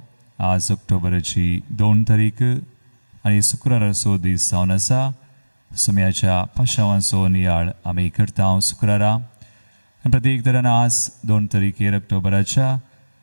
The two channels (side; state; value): both; inverted; correlation -1.00